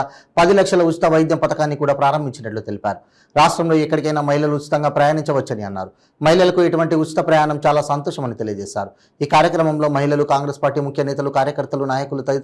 10 లక్షల ఉచిత వైద్యం పథకాన్ని కూడా ప్రారంభించినట్లు తెలిపారు. రాష్ట్రంలో ఎక్కడికైనా మహిళలు ఉచితంగా ప్రయాణించవచ్చని అన్నారు. మహిళలకు ఇటువంటి ఉచిత ప్రయాణం చాలా సంతోషమని తెలియజేశారు. ఈ కార్యక్రమంలో మహిళలు, కాంగ్రెస్ పార్టీ ముఖ్య నేతలు, కార్యకర్తలు, నాయకులు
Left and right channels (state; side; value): identical; both; correlation 1.00